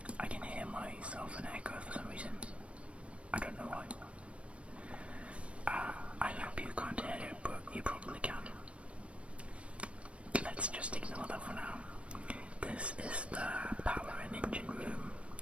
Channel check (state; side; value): late; left; 0.061 ms